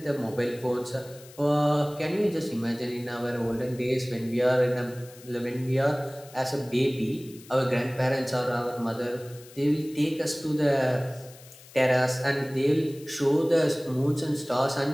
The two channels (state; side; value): noise; left; hiss, 21 dB below the sound